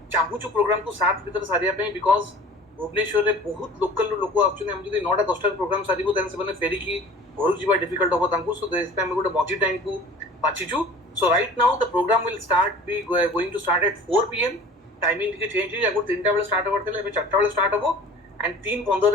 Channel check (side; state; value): both; normal; correlation 0.44